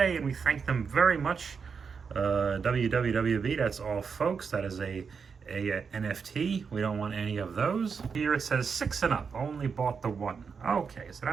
and we thank them very much. WWWV, that's all, folks. That is a NFT. We don't want any of those. Here it says 6 and up. Only bought the 1. Okay, so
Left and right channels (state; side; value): quieter; left; 5.8 dB